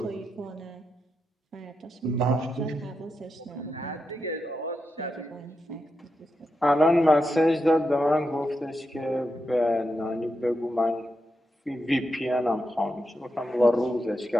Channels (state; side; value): normal; both; correlation 0.86